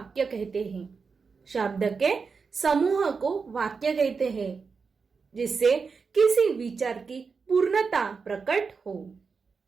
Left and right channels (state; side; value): quieter; left; 5.1 dB